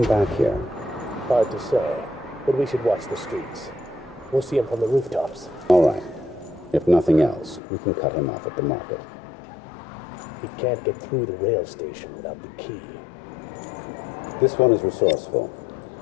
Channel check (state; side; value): drops out; right; at 7.6 s